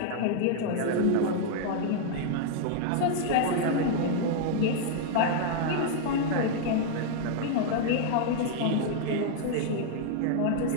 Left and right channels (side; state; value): both; different; correlation 0.00